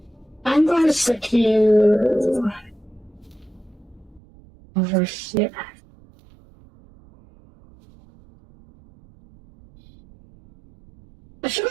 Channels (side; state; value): left; drops out; at 4.2 s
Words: I'm going to stick you over here. I feel